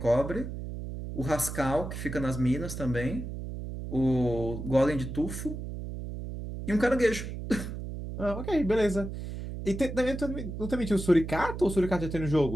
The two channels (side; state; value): right; noise; hum, 7 dB below the sound